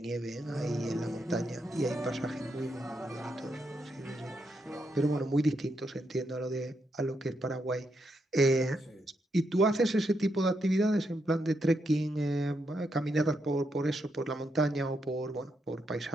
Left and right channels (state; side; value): normal; both; correlation 0.81